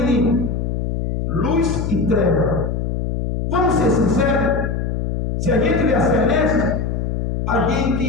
luz e treva. Vamos ser sinceros? Se a gente vê a celeste, a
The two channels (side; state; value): left; noise; hum, 1 dB below the sound